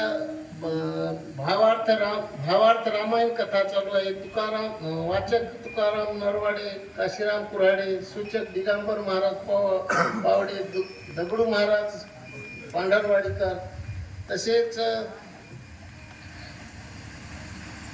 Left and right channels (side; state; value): both; identical; correlation 1.00